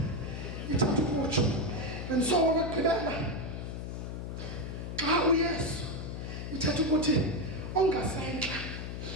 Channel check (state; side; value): noise; left; hum, 6 dB below the sound